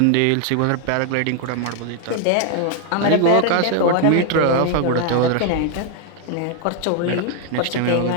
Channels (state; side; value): different; both; correlation 0.00